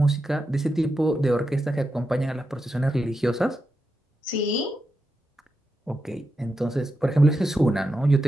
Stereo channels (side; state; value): both; normal; correlation 0.87